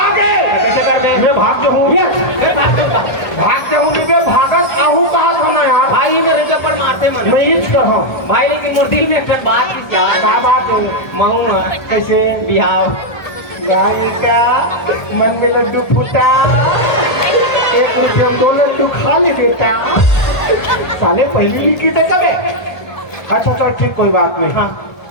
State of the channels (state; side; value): late; right; 1.3 ms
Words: आ गए कैसे कर दे मैं भाग जाऊँ मैं भाग जाऊँगा भाग जाऊँ मैं भागत आहू कहाँ होना यार भाई मेरे जबर मारते मन मैं इस कहा भाई लेकिन मुर्दी में एक बात की क्या बात है मऊन कैसे बिहाव गाय का मन में लड्डू फूटा एक रुपये दो लड्डू खा ले बेटा साले पहली लिखी थे कब अच्छा चल ठीक कोई बात नहीं हाँ